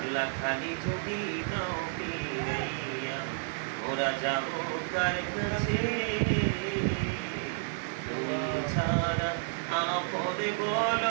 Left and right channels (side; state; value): left; silent; digital silence